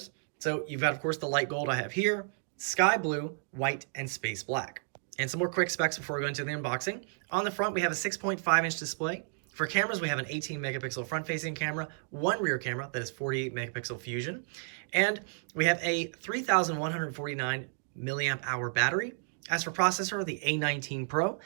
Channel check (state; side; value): silent; left; digital silence